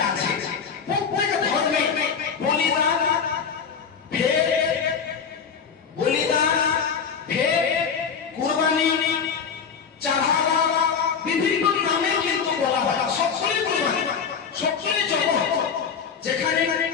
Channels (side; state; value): right; quieter; 6.5 dB